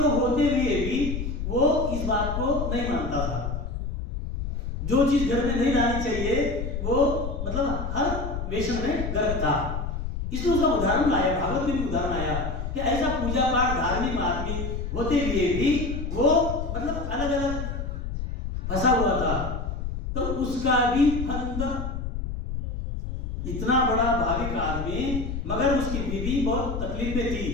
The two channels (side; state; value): left; noise; rumble, 4 dB below the sound